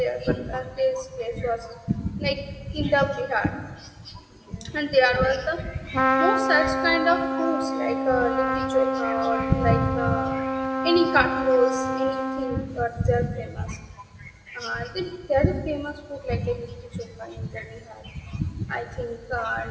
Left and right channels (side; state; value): both; identical; correlation 1.00